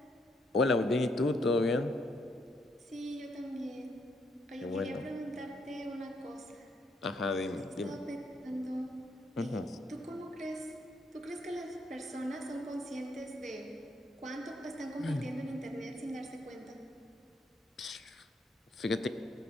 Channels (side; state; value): both; normal; correlation 0.74